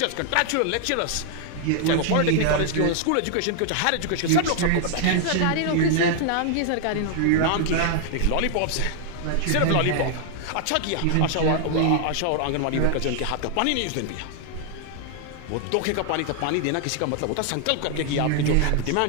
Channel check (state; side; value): different; both; correlation 0.00